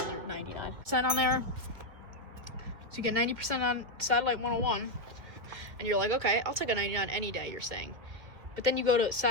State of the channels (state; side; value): late; left; 1.9 ms